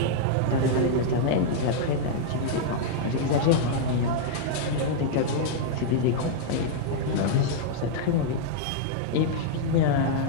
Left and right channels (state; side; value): different; both; correlation -0.01